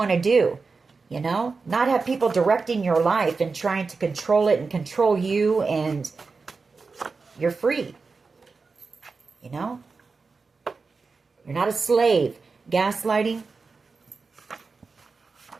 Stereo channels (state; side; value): quieter; left; 4.5 dB